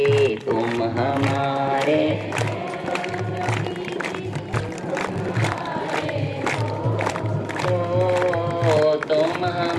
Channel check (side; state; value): both; identical; correlation 1.00